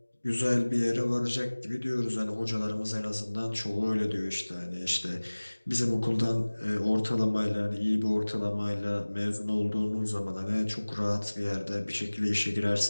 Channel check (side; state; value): both; inverted; correlation -1.00